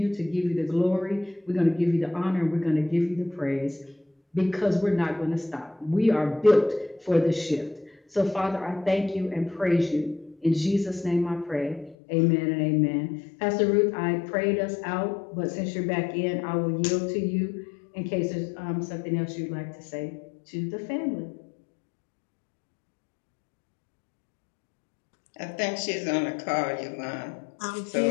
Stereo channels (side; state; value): right; drops out; at 12.0 s